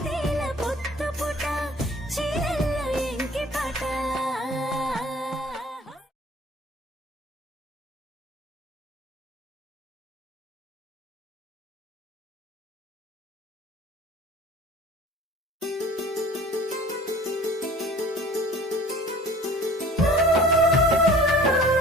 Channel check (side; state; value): both; normal; correlation 0.47